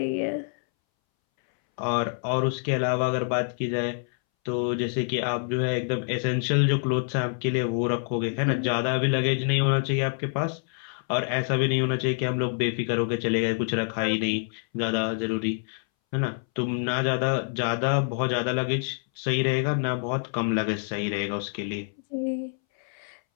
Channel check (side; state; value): right; silent; 61 dB below the other